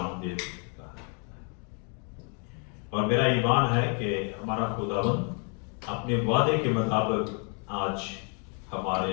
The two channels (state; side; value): quieter; right; 38.8 dB